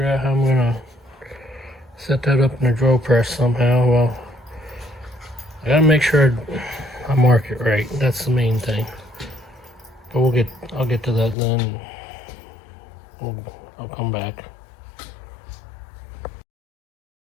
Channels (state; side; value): drops out; right; at 11.4 s